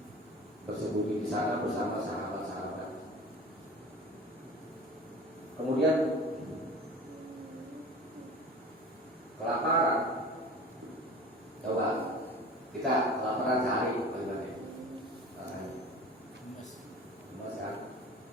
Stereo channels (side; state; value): both; normal; correlation 0.39